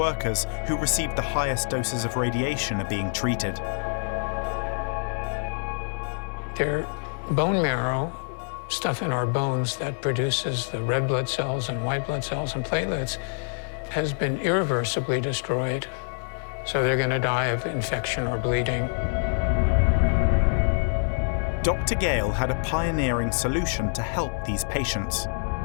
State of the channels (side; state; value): right; silent; 61 dB below the other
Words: who received the highest doses of radiation are being treated. Their bone marrow, stuff in our bones that produces the red blood cells and white blood cells and platelets, has been irreversibly destroyed. So they're going to die of infection or bleeding. Dr. Gale had a pioneering solution to help these patients.